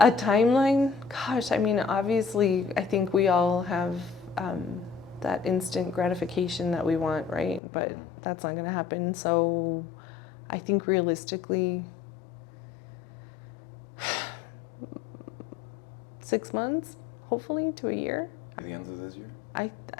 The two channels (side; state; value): right; drops out; at 7.6 s